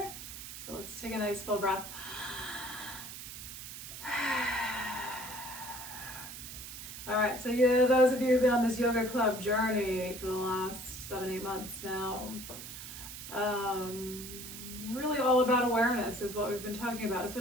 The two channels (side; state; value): right; noise; hiss, 10 dB below the sound